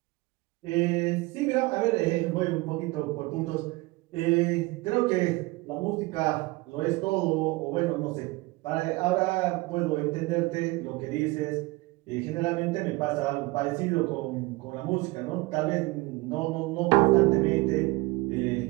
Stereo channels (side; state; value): left; quieter; 22.5 dB